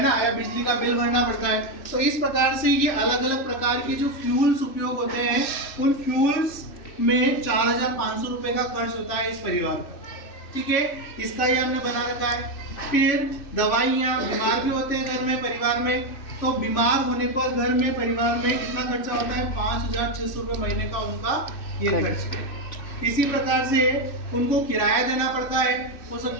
ना, या बिजली का बिल भरना पड़ता है। तो इस प्रकार से ये अलग अलग प्रकार की जो फ्यूल्स उपयोग होते हैं, उन फ्यूल्स में 4,500 रुपए का खर्च होता है इस परिवार का, ठीक है, इसका ये हमने बना रखा है। फिर दवाइयाँ, बीमार भी होते हैं घर में, परिवार में, तो बीमार होने पर घर में, परिवार में कितना खर्चा होता है, 5,600 रुपये महीने का उनका ये खर्च है। इसी प्रकार से उनको किराया देना पड़ता है, हो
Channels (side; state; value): right; late; 2.6 ms